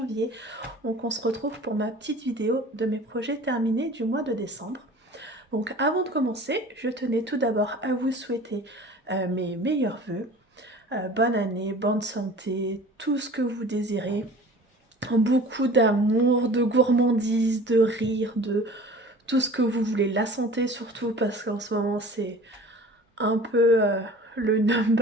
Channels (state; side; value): normal; both; correlation 0.43